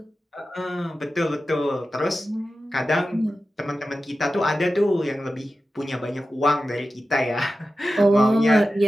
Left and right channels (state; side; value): normal; both; correlation 0.93